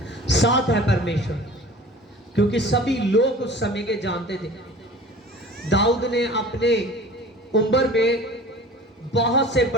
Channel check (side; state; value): both; normal; correlation 0.43